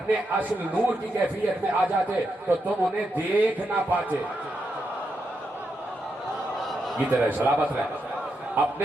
اصل نور کی کیفیت میں آ جاتے تو تم انہیں دیکھ نہ پاتے. یہ طرح سلامت رہے.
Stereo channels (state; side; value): normal; both; correlation 0.84